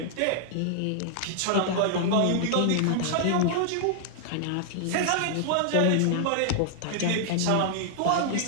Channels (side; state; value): both; different; correlation -0.01